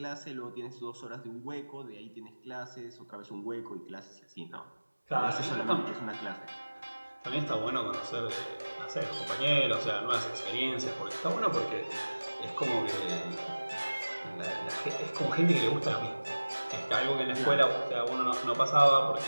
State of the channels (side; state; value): both; inverted; correlation -1.00